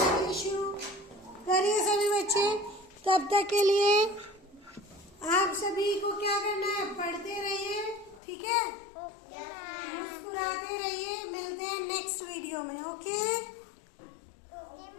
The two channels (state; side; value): drops out; right; at 8.2 s